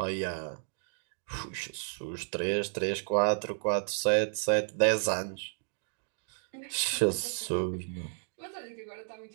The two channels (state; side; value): silent; left; digital silence